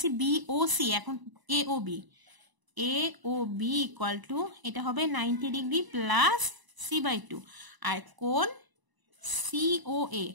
বিওসি। এখন এওবি ইকুয়াল টু এটা হবে 90 ডিগ্রি প্লাস c/2, আর কোণ সিওএ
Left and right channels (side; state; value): left; late; 1.0 ms